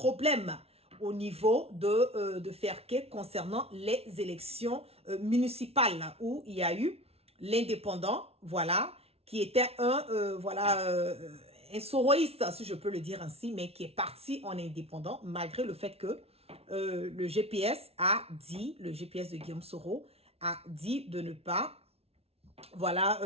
au niveau de Ferké concernant les élections municipales où il y a eu l'indépendant, voilà, qui était un soroïste, si je peux le dire ainsi, mais qui est parti en indépendant, malgré le fait que le GPS de Guillaume Soro a dit de ne pas, voilà,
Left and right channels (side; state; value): left; late; 0.30 ms